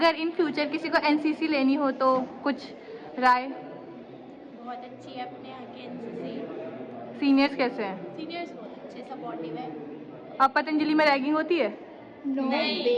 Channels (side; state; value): both; identical; correlation 1.00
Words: इन फ्यूचर किसी को एनसीसी लेनी हो तो कुछ राय? बहुत अच्छी है अपने यहाँ की एनसीसी, सीनियर्स कैसे हैं? सीनियर्स बहुत अच्छे सपोर्टिव है। अब पतंजलि में रैगिंग होती है? नो बे,